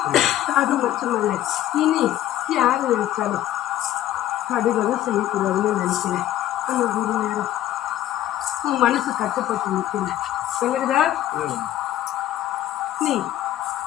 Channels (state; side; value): quieter; right; 13.0 dB